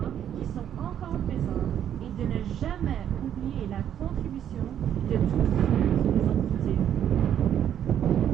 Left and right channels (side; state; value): left; quieter; 9.9 dB